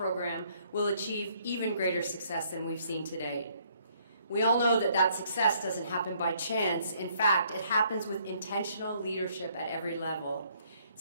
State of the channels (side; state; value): both; inverted; correlation -0.66